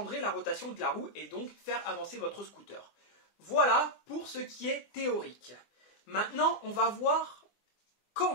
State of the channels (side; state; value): right; late; 24 ms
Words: la rotation de la roue et donc faire avancer votre scooter. Voilà pour ce qui est théorique. Maintenant, on va voir quand